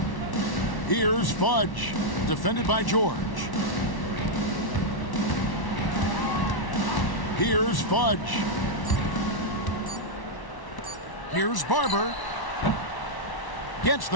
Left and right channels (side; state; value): right; late; 1.1 ms